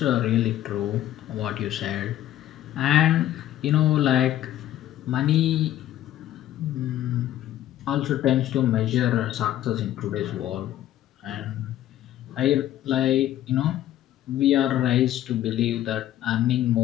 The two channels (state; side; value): quieter; right; 12.8 dB